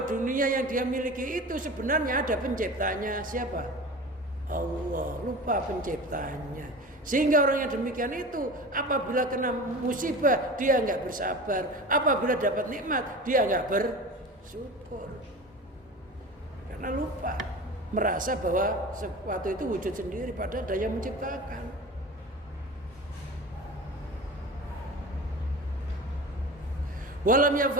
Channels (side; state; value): both; normal; correlation 0.34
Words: dunia yang dia miliki itu sebenarnya ada penciptanya. Siapa? Allah. Lupa penciptanya. Sehingga orang yang demikian itu apabila kena musibah dia nggak bersabar, apabila dapat nikmat dia nggak bersyukur, karena lupa, merasa bahwa sesuatu itu wujud sendiri padahal ada yang menciptakan. Walam